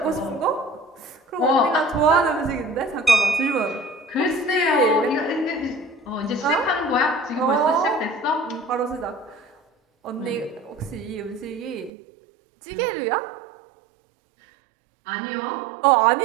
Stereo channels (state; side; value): drops out; left; at 11.9 s